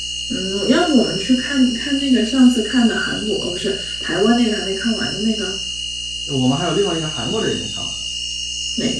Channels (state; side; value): noise; right; hum, 16 dB below the sound